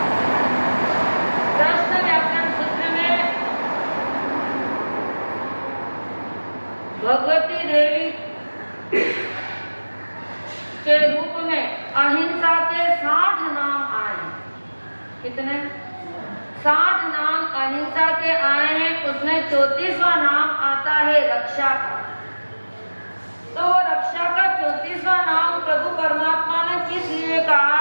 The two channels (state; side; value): inverted; both; correlation -1.00